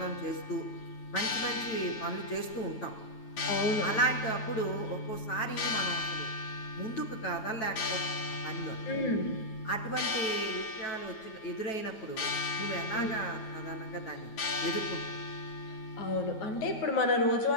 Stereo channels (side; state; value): right; late; 9.2 ms